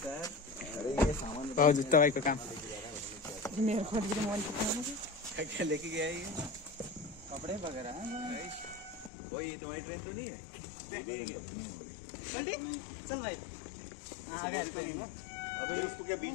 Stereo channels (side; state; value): right; drops out; at 9.1 s